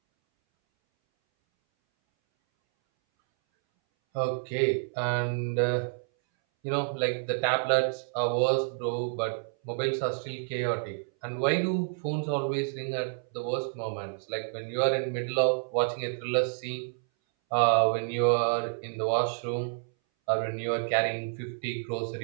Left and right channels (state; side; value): silent; left; 59 dB below the other